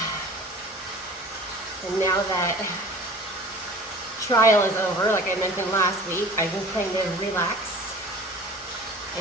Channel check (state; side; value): normal; both; correlation 0.43